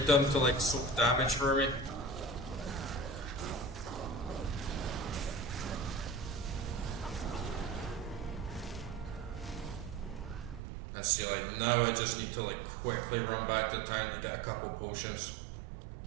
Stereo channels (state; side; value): drops out; left; at 10.6 s